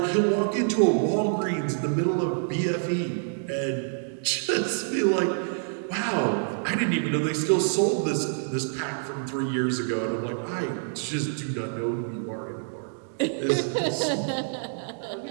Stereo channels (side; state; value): left; silent; digital silence